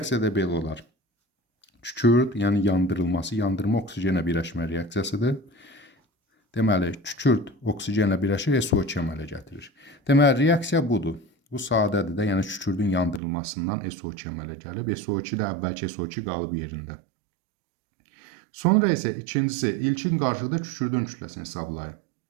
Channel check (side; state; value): left; drops out; at 13.2 s